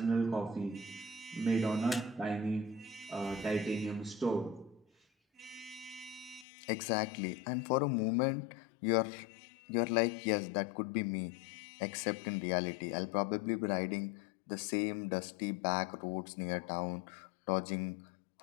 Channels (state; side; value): drops out; right; at 6.5 s